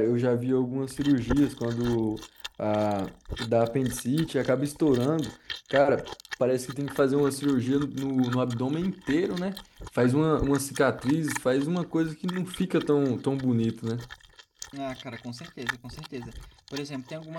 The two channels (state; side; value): identical; both; correlation 1.00